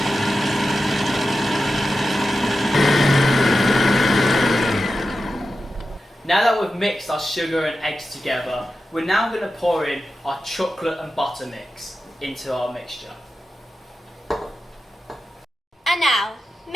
Now that we've mixed our sugar and eggs together, we're now going to pour in our chocolate and butter mix into our mixture. And now,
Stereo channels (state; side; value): normal; both; correlation 0.91